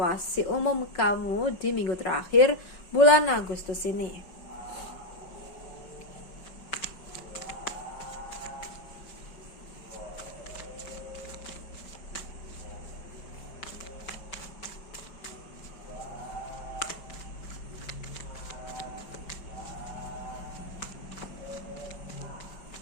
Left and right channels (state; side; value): late; right; 5.5 ms